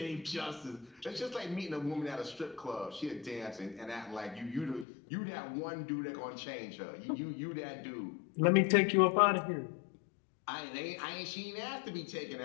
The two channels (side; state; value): right; drops out; at 4.9 s